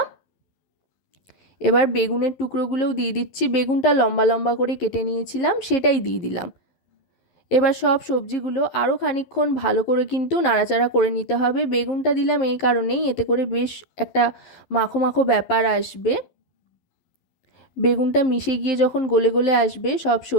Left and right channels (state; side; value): late; right; 11 ms